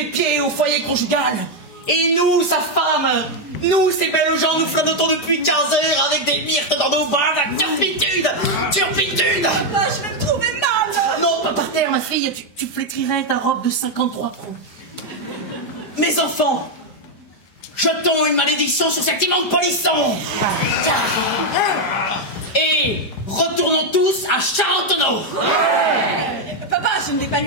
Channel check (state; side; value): late; right; 5.0 ms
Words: pieds au foyer conjugal. Et nous, sa femme, nous, ces belles gens, nous flottons depuis 15 heures avec des myrtes dans nos bras, la turpitude! Ah, je vais me trouver mal. Non, pas par terre, ma fille, tu flétrirais ta robe de 53 pros. Mes enfants, jetons une malédiction sur cet immonde polisson. Et retournons tous à Charentonneau. Papa, je ne vais pas